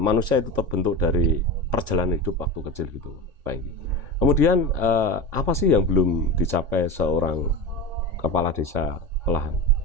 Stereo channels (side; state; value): left; late; 3.5 ms